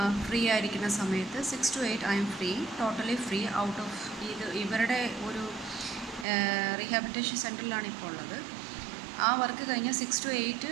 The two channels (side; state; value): left; drops out; at 6.2 s